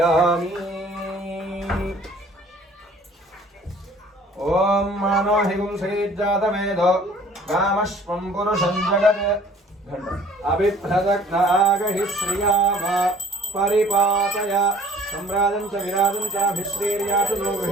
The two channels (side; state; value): both; normal; correlation 0.52